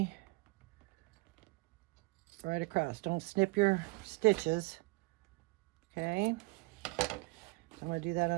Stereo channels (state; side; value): quieter; left; 26.0 dB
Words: right across. Don't snip your stitches. Okay, so I'm going to do that